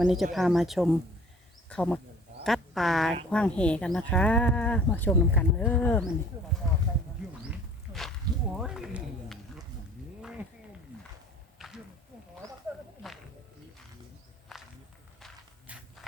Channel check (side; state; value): both; normal; correlation 0.50